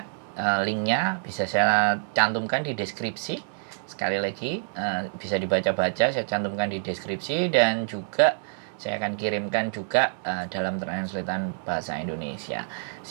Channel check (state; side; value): silent; left; digital silence